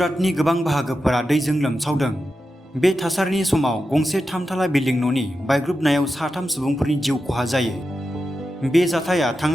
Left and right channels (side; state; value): both; normal; correlation 0.90